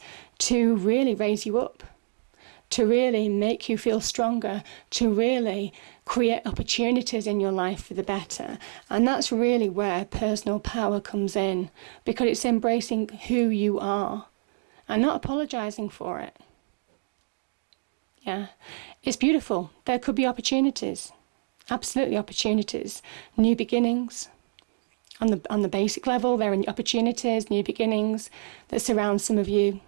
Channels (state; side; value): silent; left; digital silence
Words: to really raise you up. to really make you feel stronger, to really create opportunities in your life for the better. And that's really where personal power comes in, because it's embracing who you are and not apologizing for it. Yeah, it's beautiful. There could be opportunities, absolutely opportunities, new beginnings. On the basic level, there are opportunities, new beginnings that surround some of you